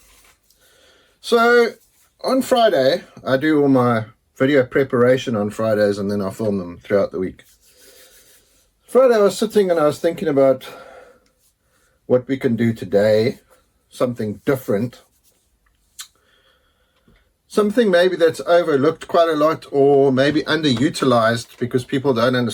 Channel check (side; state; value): both; identical; correlation 1.00